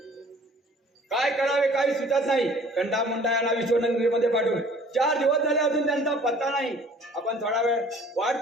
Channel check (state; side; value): normal; both; correlation 0.52